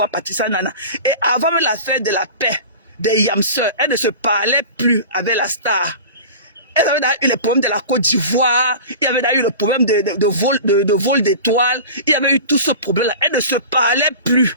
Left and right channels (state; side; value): inverted; both; correlation -0.35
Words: Patissa Nana. Et avant même l'affaire de la paix, des Yamseurs, elle ne se parlait plus avec la star. Elle avait eu le problème de la Côte d'Ivoire, il y avait eu le problème de vol d'étoiles, il y avait eu tout ce problème-là. Elle ne se parlait plus.